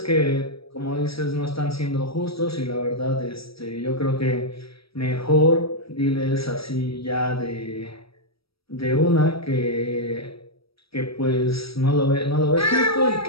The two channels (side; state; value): right; late; 0.76 ms